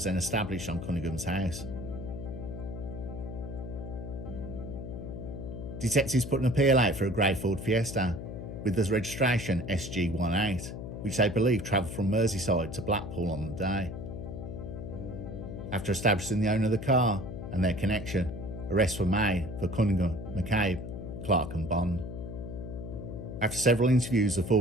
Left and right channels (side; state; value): left; noise; hum, 8 dB below the sound